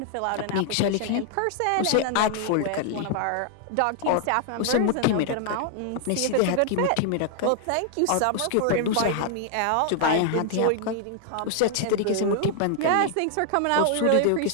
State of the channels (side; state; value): both; different; correlation 0.00